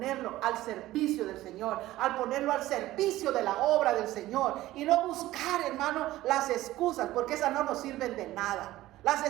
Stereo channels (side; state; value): left; quieter; 16.0 dB